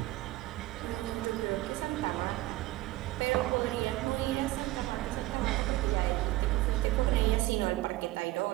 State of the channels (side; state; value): left; quieter; 17.9 dB